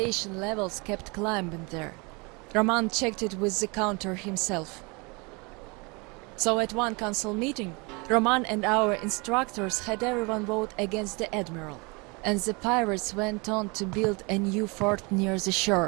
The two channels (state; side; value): quieter; left; 28.7 dB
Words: levels kept climbing there. Roman checked it with the counter himself. So at one council meeting, Roman and our instructors had everyone vote against the Admiral, and the pirates went on to build a new fort near the